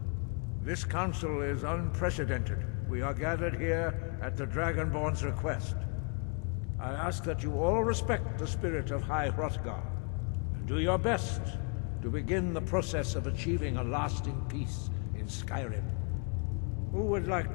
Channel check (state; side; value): quieter; right; 36.0 dB